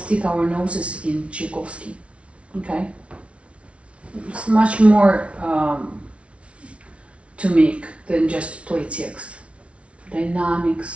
our noses in Tchaikovsky. Okay, it's much more to make than just play text.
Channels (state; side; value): late; left; 0.061 ms